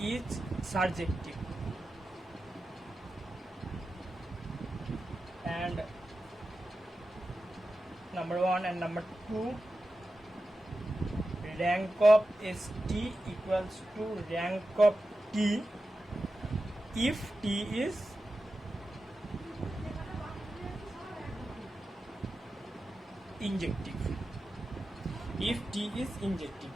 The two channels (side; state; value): both; normal; correlation 0.92